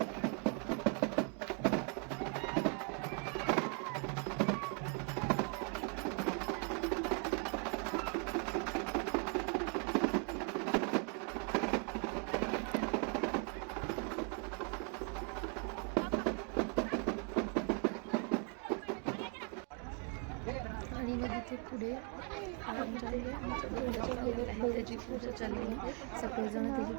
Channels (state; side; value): quieter; left; 38.8 dB